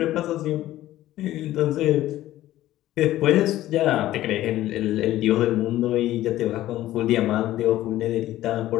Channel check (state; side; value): quieter; right; 14.6 dB